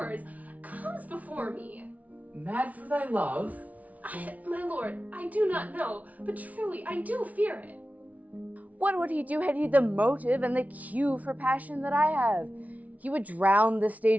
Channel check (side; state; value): left; late; 0.071 ms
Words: comes before me. Mad for thy love? My lord, I do not know, but truly I do fear it. What would he do had he the motive and the cue for passion that I have? He would drown the